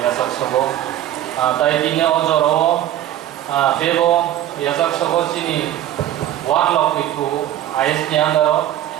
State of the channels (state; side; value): quieter; left; 12.5 dB